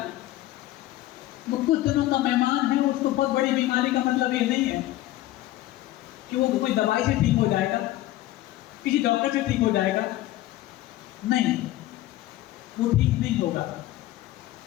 वो कुछ दिनों का मेहमान है, उसको बहुत बड़ी बीमारी का मतलब ये नहीं है कि वो कोई दवाई से ठीक हो जाएगा, किसी डॉक्टर से ठीक हो जाएगा। नहीं, वो ठीक नहीं होगा,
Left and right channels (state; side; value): quieter; right; 15.6 dB